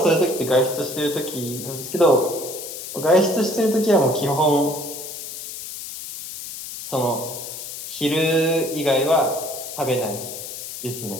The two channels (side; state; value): left; noise; hiss, 9 dB below the sound